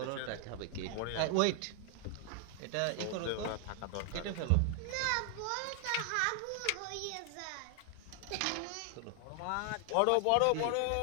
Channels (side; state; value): both; different; correlation 0.00